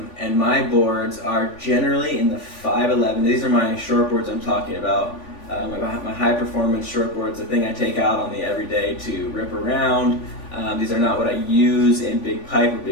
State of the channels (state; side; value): late; right; 3.5 ms